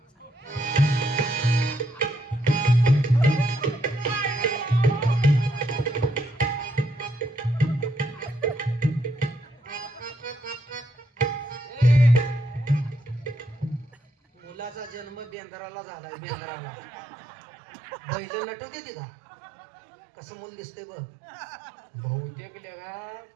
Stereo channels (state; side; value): drops out; left; at 15.3 s